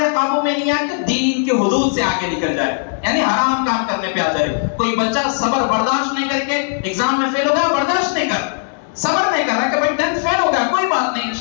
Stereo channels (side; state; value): right; silent; digital silence